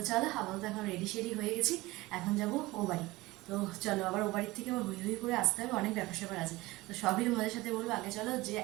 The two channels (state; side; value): quieter; left; 20.0 dB